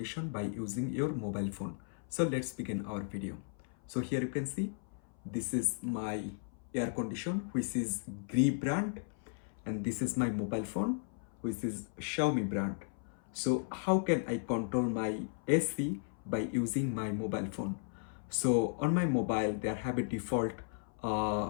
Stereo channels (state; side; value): silent; right; 54 dB below the other